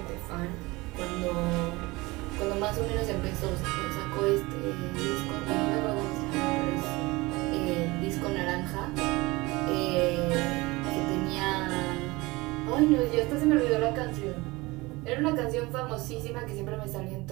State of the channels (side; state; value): left; quieter; 22.6 dB